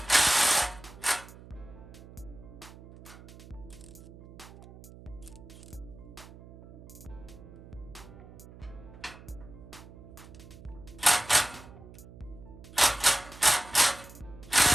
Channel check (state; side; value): noise; right; hum, 18 dB below the sound